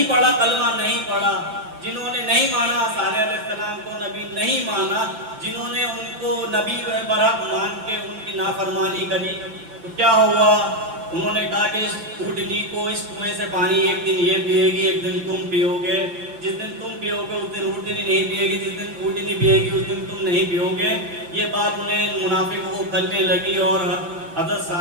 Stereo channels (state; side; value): late; left; 5.9 ms